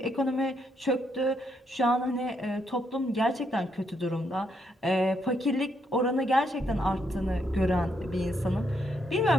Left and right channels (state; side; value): normal; both; correlation 0.77